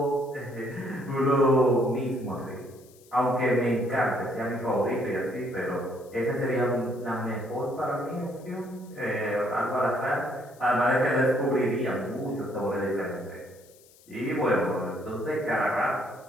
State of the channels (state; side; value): noise; left; hiss, 27 dB below the sound